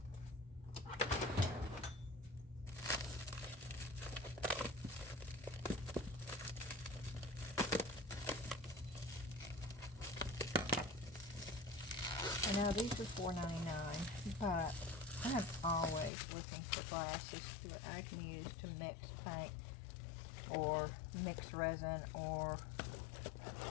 I know these are $4.99, but I'm always looking for glasses that I can use to mix paint or mix resin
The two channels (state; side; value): drops out; right; at 16.1 s